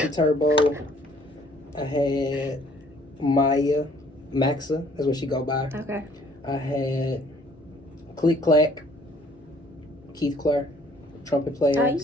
Turbo. I had Maya Maxa. That's what she go by. Okay. I had Click Clack. Keith Clark, trumpet player,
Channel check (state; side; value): normal; both; correlation 0.60